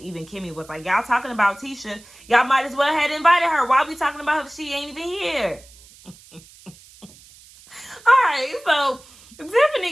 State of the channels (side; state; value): right; noise; hiss, 24 dB below the sound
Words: Kimmy was like, y'all talking about Tisha. Y'all might as well have invited her. Why are we talking about her if she ain't even here? All right, so